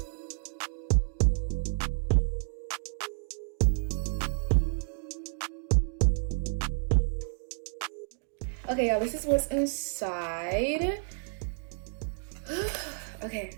Okay, y'all, this is what's inside. Okay,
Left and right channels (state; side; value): silent; left; 57 dB below the other